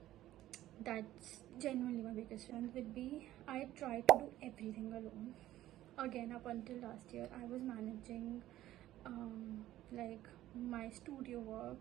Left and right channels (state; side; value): quieter; left; 14.2 dB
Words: That's genuinely my biggest challenge would be, I try to do everything alone. Again, up until last year, I was managing like my studio